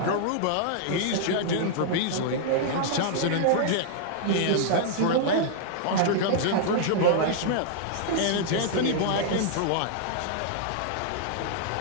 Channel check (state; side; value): different; both; correlation -0.01